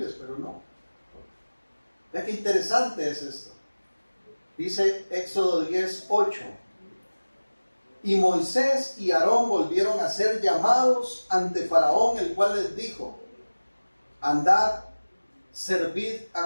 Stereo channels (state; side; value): inverted; both; correlation -1.00